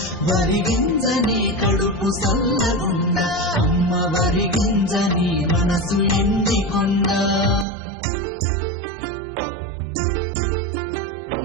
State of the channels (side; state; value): left; drops out; at 7.7 s